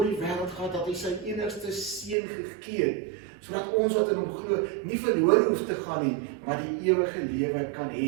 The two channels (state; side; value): drops out; left; at 2.1 s